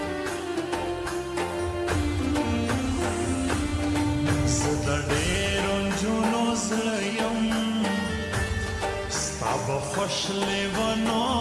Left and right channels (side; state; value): both; identical; correlation 1.00